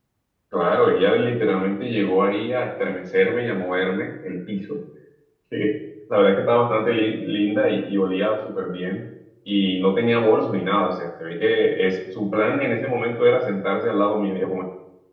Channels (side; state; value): both; identical; correlation 1.00